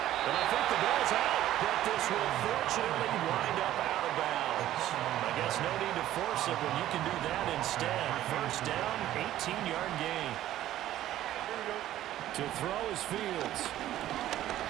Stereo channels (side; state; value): left; quieter; 13.3 dB